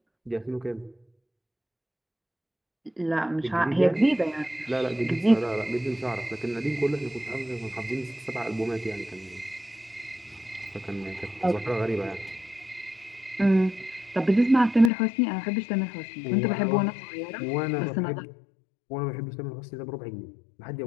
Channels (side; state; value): right; drops out; at 14.9 s